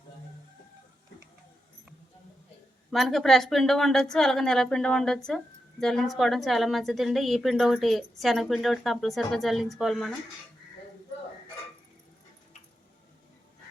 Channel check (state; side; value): normal; both; correlation 0.87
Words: మనకి ఫ్రెష్ పిండి ఉండొచ్చు, అలాగే నెల పిండి ఉండొచ్చు. జల్లించుకోవడం చాలా మంచిదండి. ఈ పిండి ఒకటి, శనగపిండి ఒకటి కంపల్సరీగా జల్లించుకోవాలి మనం.